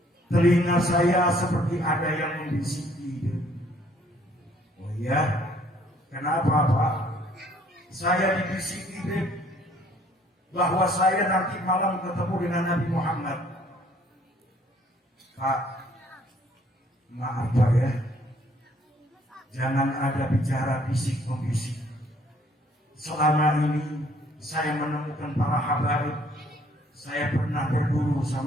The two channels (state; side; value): normal; both; correlation 0.62